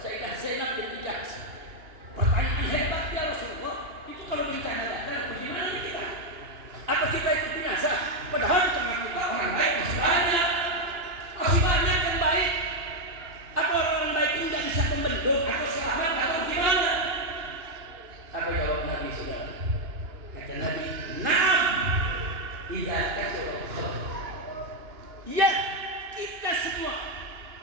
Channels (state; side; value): late; left; 2.9 ms